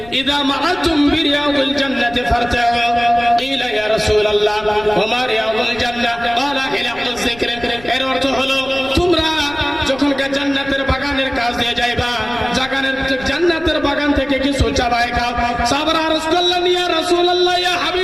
ইযা মাআতুম বিরিয়াউল জান্নাতি ফারতাউ। কিলা ইয়া রাসূলুল্লাহ ওয়া মা রিয়াউল জান্নাহ? ক্বালা হিলাকুয যিকর। এর অর্থ হলো তোমরা যখন জান্নাতের বাগানের কাজ দিয়ে যাইবা, জান্নাতের বাগান থেকে কিছু চাবাই খাও। সাহাবারা আরজ করলেন ইয়া রাসূলুল্লাহ ইয়া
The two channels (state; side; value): noise; left; rumble, 20 dB below the sound